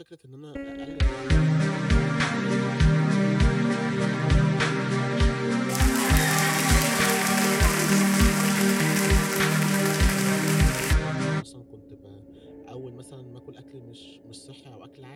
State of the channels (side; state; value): both; identical; correlation 1.00